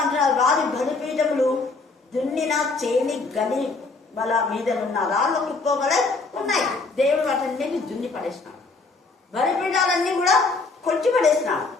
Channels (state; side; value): quieter; right; 3.8 dB